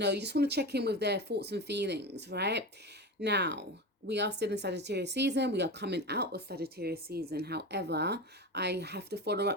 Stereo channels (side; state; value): both; normal; correlation 0.25